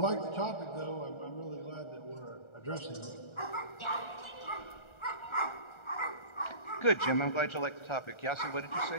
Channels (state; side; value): late; right; 1.4 ms